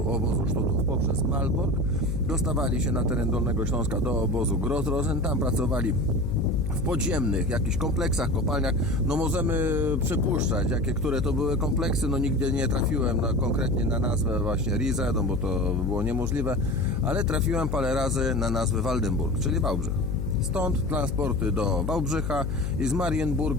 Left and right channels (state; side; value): noise; left; hum, 2 dB below the sound